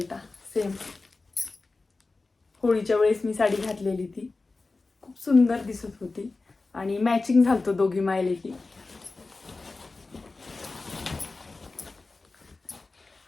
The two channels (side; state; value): right; quieter; 3.6 dB